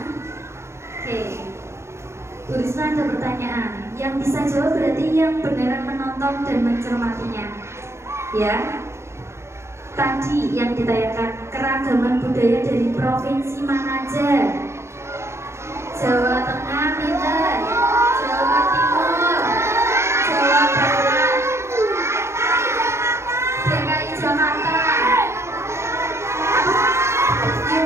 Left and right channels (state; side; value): late; left; 0.13 ms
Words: Oke, Bu Risma ada pertanyaan. Yang bisa jawab berarti yang beneran menonton dan mencermatinya. Ya. Tadi yang ditayangkan keragaman budaya dari provinsi mana aja? Jawa Tengah, pinter. Jawa Timur, Jawa Barat, DKI Jakarta,